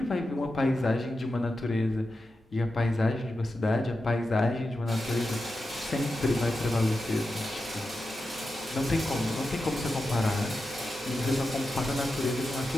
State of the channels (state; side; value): normal; both; correlation 0.90